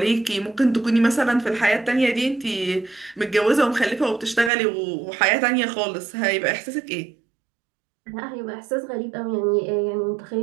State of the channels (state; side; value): drops out; left; at 4.5 s